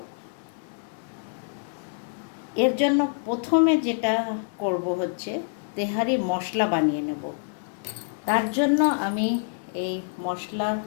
এর জন্য প্রথমে যেটা করব হচ্ছে তেহারি মশলা বানিয়ে নেব। তার জন্য আমি এই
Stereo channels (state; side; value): silent; right; 61 dB below the other